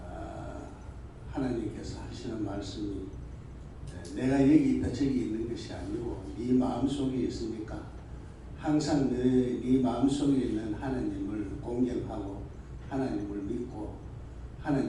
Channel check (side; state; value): both; identical; correlation 1.00